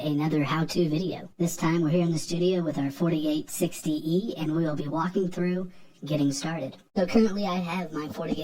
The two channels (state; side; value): identical; both; correlation 1.00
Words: how-to video. This time we're here in the studio with our FortiGate 60E, and we will be walking through getting started. So currently I have my